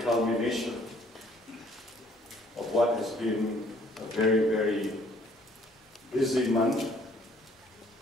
culmination of what has been a very, very busy month,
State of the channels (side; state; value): both; normal; correlation 0.61